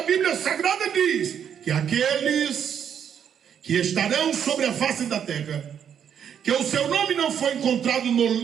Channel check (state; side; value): quieter; left; 8.5 dB